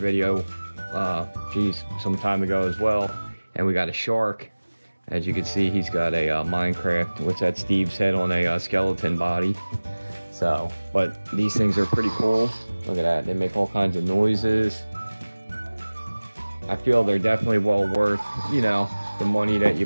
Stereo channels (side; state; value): both; inverted; correlation -1.00